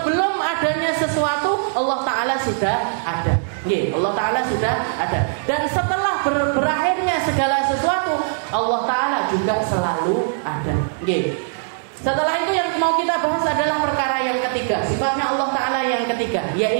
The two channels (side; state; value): left; silent; 63 dB below the other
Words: adanya sesuatu, Allah Ta'ala sudah ada. Allah Ta'ala sudah ada. Dan setelah berakhirnya segala sesuatu, Allah Ta'ala juga selalu ada. Setelah itu yang mau kita bahas adalah perkara yang ketiga, sifatnya Allah Ta'ala yang ketiga,